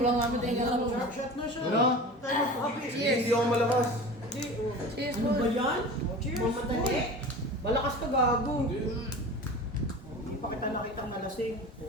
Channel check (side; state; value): both; normal; correlation 0.35